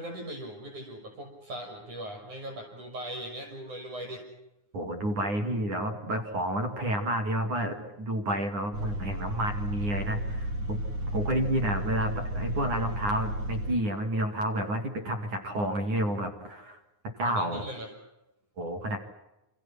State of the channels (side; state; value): left; late; 9.7 ms